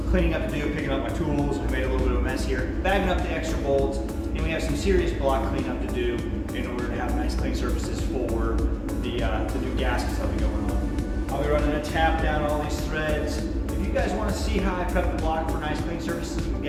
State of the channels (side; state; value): both; identical; correlation 1.00